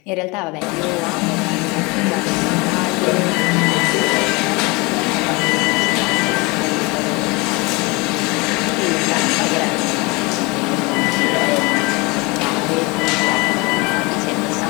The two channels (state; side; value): quieter; right; 26.1 dB